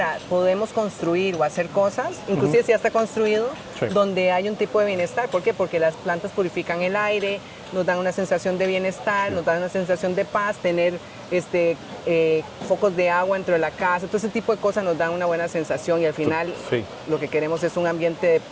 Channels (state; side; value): identical; both; correlation 1.00